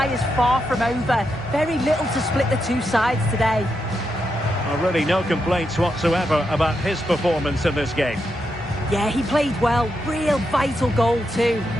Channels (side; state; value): both; normal; correlation 0.84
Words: is far from over. Very little to split the two sides today. Well, really no complaints whatsoever about his performance in this game. Yeah, he played well. Real vital goal too.